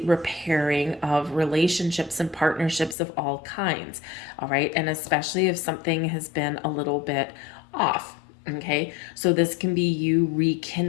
repairing of relationships and partnerships of all kinds, all right? And especially if something has been a little bit off. Okay, so this can be you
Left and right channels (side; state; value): right; drops out; at 3.0 s